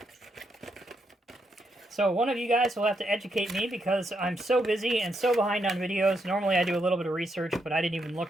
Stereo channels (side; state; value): both; normal; correlation 0.80